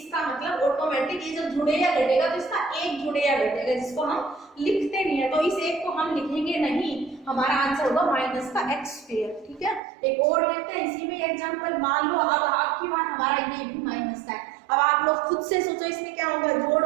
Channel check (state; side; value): drops out; left; at 9.8 s